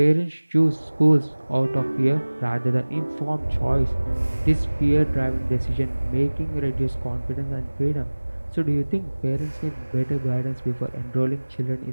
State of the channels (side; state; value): both; inverted; correlation -1.00